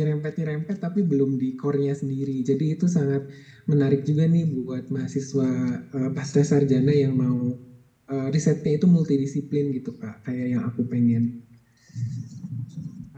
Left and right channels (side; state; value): both; identical; correlation 1.00